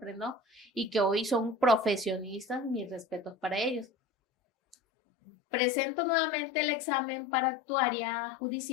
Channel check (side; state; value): right; drops out; at 4.8 s